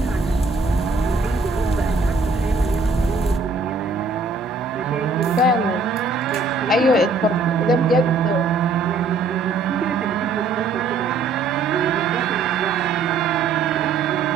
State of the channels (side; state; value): left; quieter; 4.0 dB